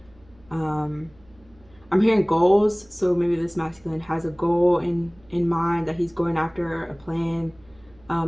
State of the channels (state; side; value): noise; right; hum, 29 dB below the sound